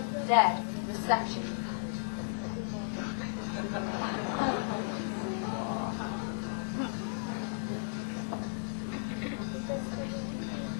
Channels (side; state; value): right; silent; digital silence